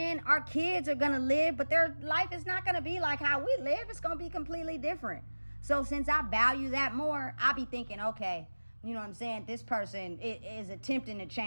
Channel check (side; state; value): both; inverted; correlation -1.00